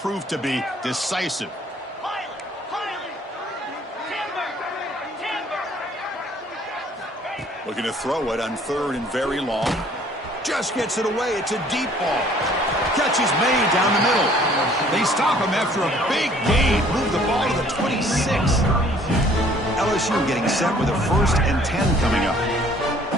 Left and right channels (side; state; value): both; normal; correlation 0.57